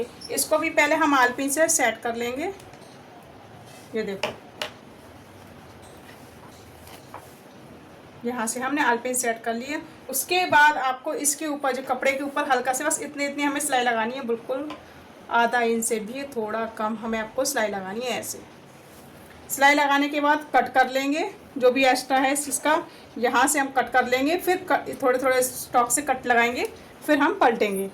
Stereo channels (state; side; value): identical; both; correlation 1.00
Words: इसको भी पहले हम आलपिन से सेट कर लेंगे। ये देखो, यहाँ से हमने आलपिन सेट कर लिए। उसके बाद आपको इसके ऊपर, जो कपड़े के ऊपर हल्का से, बस इतनी इतनी हमें सिलाई लगानी है, बिल्कुल आधा इंच से भी थोड़ा कम हमें आपको सिलाई लगानी है। ऐसे सिलाई लगाने के बाद कट कर लेंगे, जो भी एक्स्ट्रा है इसका यहाँ से हम कट कर लेंगे। फिर थोड़े थोड़े स्टॉक से कट लगाएंगे, फिर हम पलटेंगे।